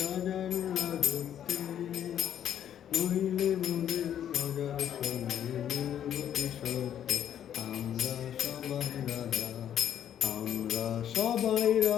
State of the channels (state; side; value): quieter; right; 10.0 dB